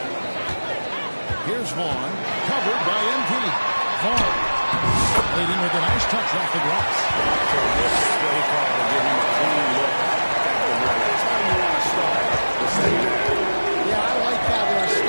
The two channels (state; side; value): inverted; both; correlation -1.00